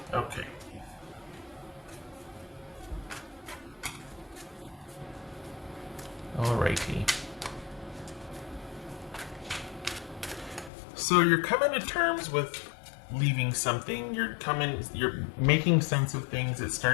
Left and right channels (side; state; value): right; drops out; at 10.7 s